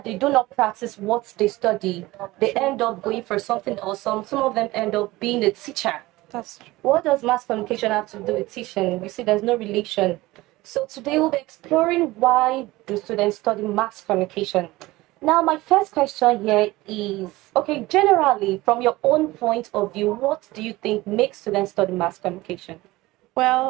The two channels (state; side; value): quieter; left; 19.3 dB